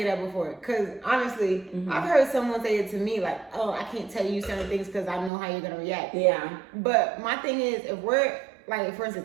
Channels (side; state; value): left; drops out; at 5.3 s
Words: that before. Cause honestly, I've heard someone say it to me like, oh, I can't tell you certain things because I know how you're gonna react. Yeah. But my thing is, if we're like, for